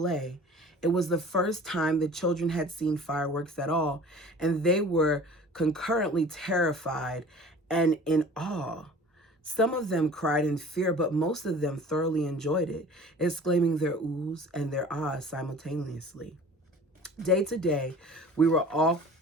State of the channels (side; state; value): both; normal; correlation 0.44